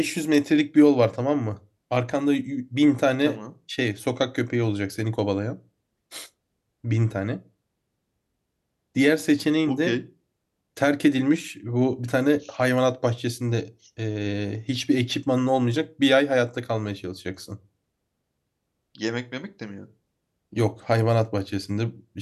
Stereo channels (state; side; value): identical; both; correlation 1.00